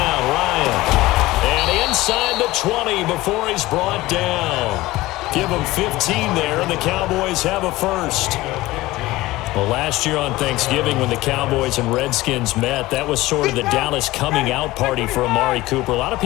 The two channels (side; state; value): right; quieter; 18.4 dB